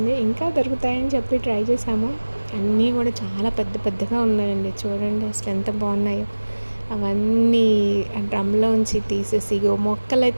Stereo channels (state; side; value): inverted; both; correlation -1.00